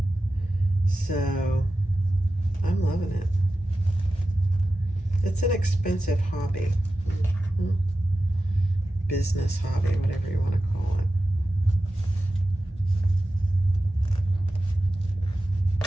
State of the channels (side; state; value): both; normal; correlation 0.93